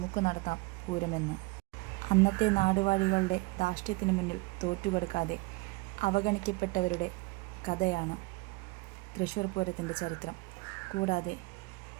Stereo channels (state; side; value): quieter; left; 24.4 dB